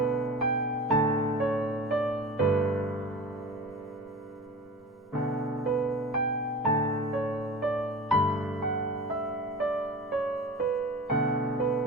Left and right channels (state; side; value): normal; both; correlation 0.35